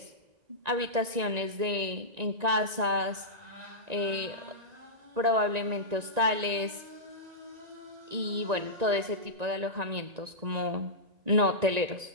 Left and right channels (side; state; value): left; late; 1.9 ms